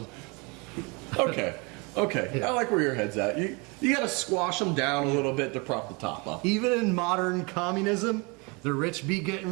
Okay. I like where your head's at. You got to squash them down a little bit to prop the top up. Even in modern communism, the rich be getting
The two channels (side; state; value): left; quieter; 29.3 dB